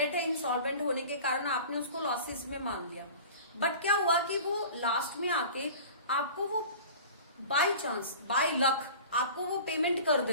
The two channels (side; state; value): both; inverted; correlation -0.40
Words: है, इंसॉल्वेंट होने के कारण आपने उसको लॉसेस में मान लिया, बट क्या हुआ कि वो लास्ट में आके आपको वो बाय चांस, बाय लक आपको वो पेमेंट कर